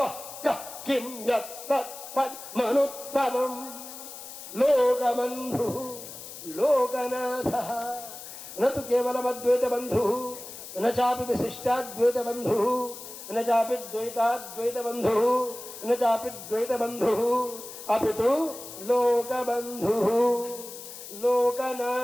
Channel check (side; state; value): left; noise; hiss, 13 dB below the sound